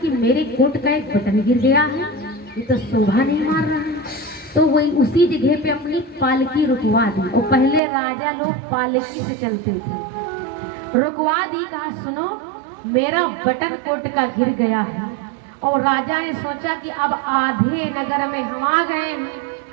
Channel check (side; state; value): left; drops out; at 7.8 s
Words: मेरे कोट का एक बटन गिर गया है, ये तो शोभा नहीं मार रहा है। तो वही उसी जगह पे अपनी पालकी रुकवा दी। और पहले राजा लोग पालकी से चलते थे, रुकवा दी। कहा सुनो मेरा बटन कोट का गिर गया है। और राजा ने सोचा कि अब आधे नगर में हम आ गए हैं